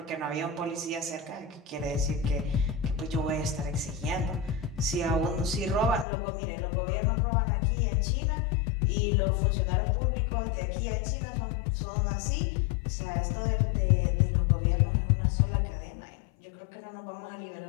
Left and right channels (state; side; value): drops out; right; at 6.1 s